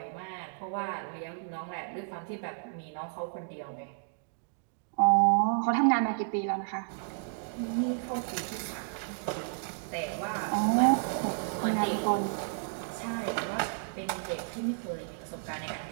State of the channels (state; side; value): silent; left; digital silence